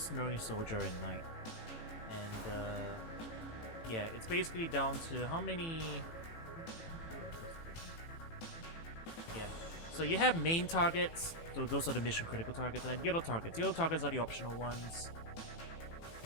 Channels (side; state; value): right; late; 18 ms